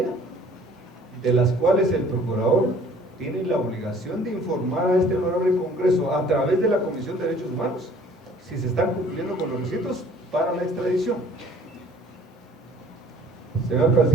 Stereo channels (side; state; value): both; normal; correlation 0.53